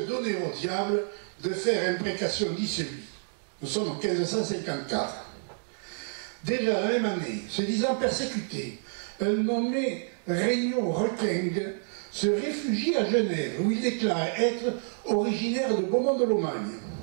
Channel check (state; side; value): silent; left; digital silence